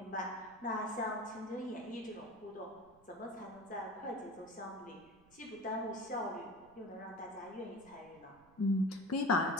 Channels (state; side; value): noise; right; rumble, 27 dB below the sound